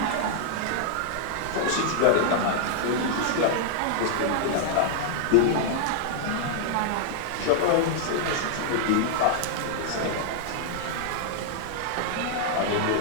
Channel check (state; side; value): different; both; correlation 0.00